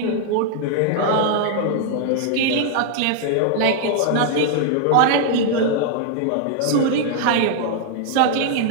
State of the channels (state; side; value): different; both; correlation 0.00